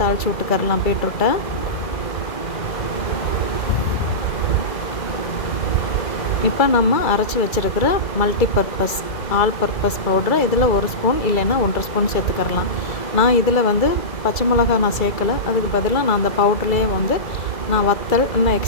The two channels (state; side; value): late; right; 2.3 ms